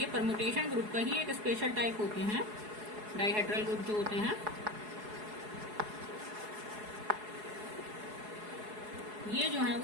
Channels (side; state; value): left; late; 4.7 ms